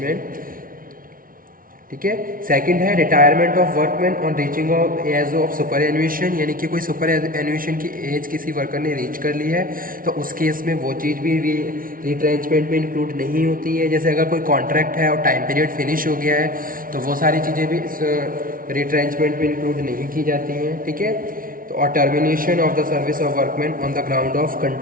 ठीक है, सेकंड है retirement of workman on reaching of age of superannuation, यानी कि कोई सुपर एन्यूएशन की एज किसी वर्कर ने रीच कर ली है तो उस केस में वो चीज़ भी रिट्रेंचमेंट में इंक्लूड नहीं होती है। जैसे अगर कोई कॉन्ट्रैक्ट है और टाइम पीरियड फिनिश हो गया है तो वो सारी चीज़ें भी रिट्रेंचमेंट में इंक्लूड नहीं की जाती हैं। ठीक है, तो और termination of the service of workman on the ground of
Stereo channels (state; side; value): late; left; 0.41 ms